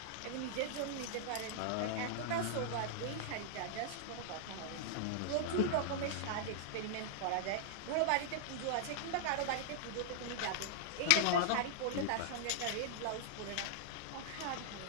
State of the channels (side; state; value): both; different; correlation -0.01